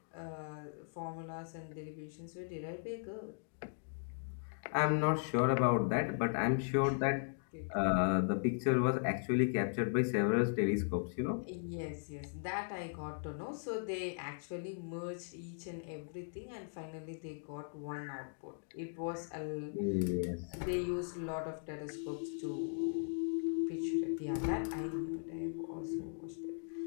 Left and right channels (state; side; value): silent; right; digital silence